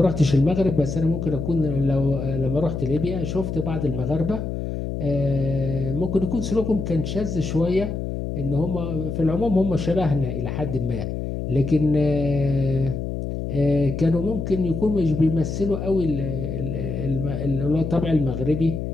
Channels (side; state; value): left; noise; hum, 4 dB below the sound